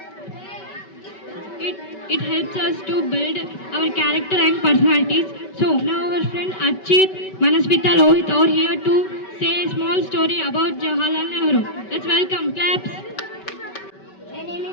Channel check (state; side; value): late; right; 5.2 ms